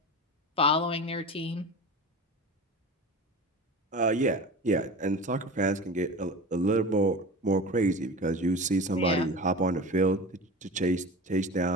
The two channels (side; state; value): both; normal; correlation 0.32